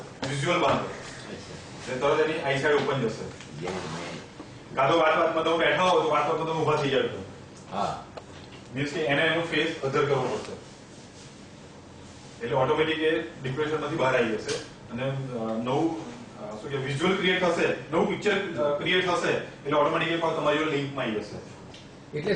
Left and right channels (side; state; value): both; identical; correlation 1.00